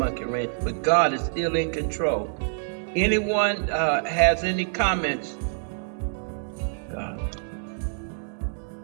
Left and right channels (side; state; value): left; silent; digital silence